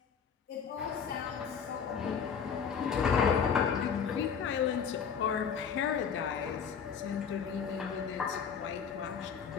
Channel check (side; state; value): right; quieter; 6.9 dB